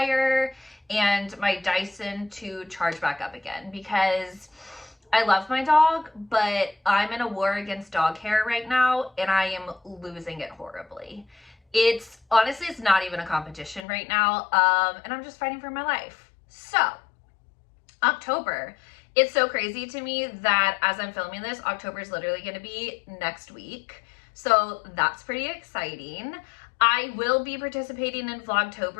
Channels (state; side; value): drops out; right; at 13.8 s